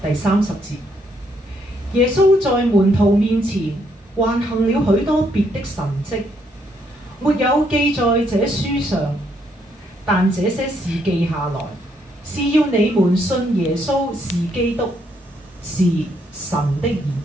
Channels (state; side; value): normal; both; correlation 0.73